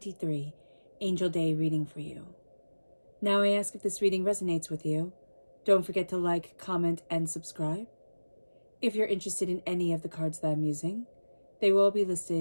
Angel Day reading for you. Now I ask if this reading resonates with you. Don't forget to like, comment, and subscribe. If you're interested in any of the cards that I'm using, they will be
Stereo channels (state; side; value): inverted; both; correlation -1.00